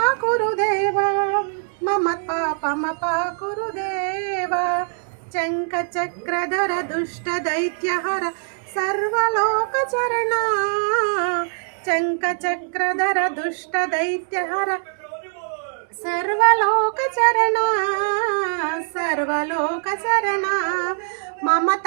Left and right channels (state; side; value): silent; left; digital silence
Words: देवा मम पापमपाकुरु देवा चंकचक्रधर दुष्ट दैत्यहर सर्वलोकचरणा चंकचक्रधर दुष्ट दैत्यहर सर्वलोकचरणा सर्वलोकचरणा मम